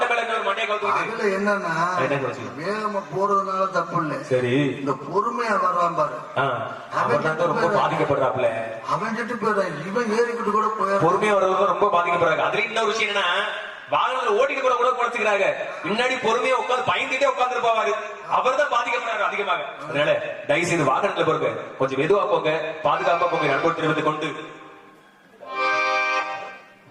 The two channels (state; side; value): identical; both; correlation 1.00